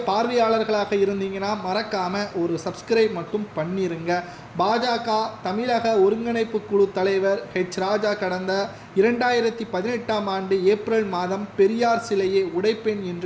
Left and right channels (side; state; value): both; identical; correlation 1.00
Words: பார்வையாளர்களாக இருந்தீங்கன்னா மறக்காமல் ஒரு சப்ஸ்கிரைப் மட்டும் பண்ணிருங்க. பாஜக தமிழக ஒருங்கிணைப்பு குழு தலைவர் ராஜா கடந்த 2018ஆம் ஆண்டு ஏப்ரல் மாதம் பெரியார் சிலையை உடைப்பேன்